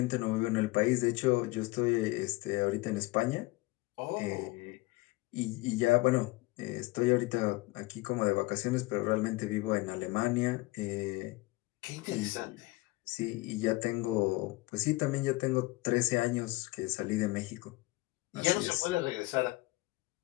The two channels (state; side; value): quieter; right; 21.6 dB